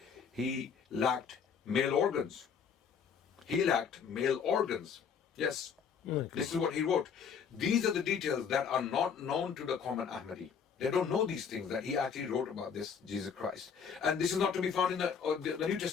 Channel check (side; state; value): right; quieter; 6.8 dB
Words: he lacked male organs. Yes. This is what he wrote. These are the details that are not known to the common Ahmadi. They don't know these things that he actually wrote about this Jesus Christ, and this is not to be found in the New